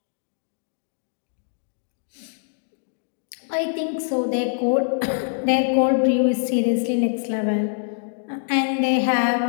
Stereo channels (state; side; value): silent; right; digital silence